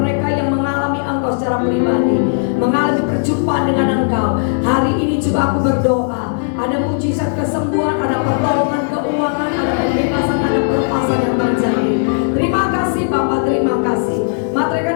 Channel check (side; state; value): right; silent; digital silence